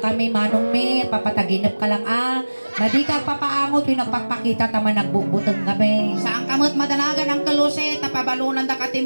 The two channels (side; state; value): both; inverted; correlation -1.00